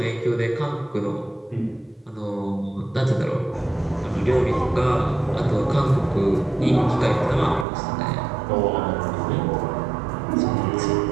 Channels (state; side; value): drops out; left; at 7.7 s